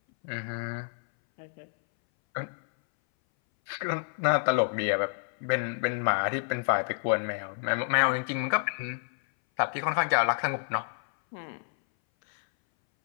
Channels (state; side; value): silent; right; 59 dB below the other